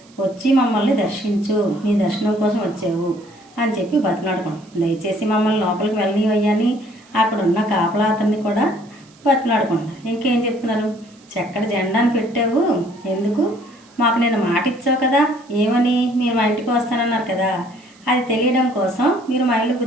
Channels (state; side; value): noise; right; hiss, 28 dB below the sound